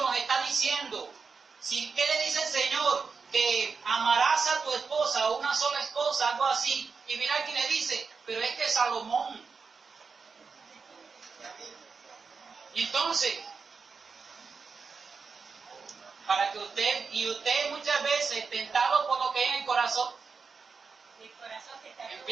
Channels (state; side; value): quieter; left; 5.1 dB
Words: está diciendo. ¿Qué le dice el Señor? Que amarás a tu esposa, o una sola esposa, algo así. Y mira aquí le dice, pero es que Salomón. Y entonces, para que usted muchas veces, tentado por lo que hay en el corazón